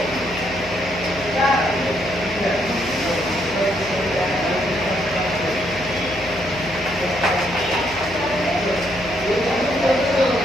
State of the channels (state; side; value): noise; left; hum, 16 dB below the sound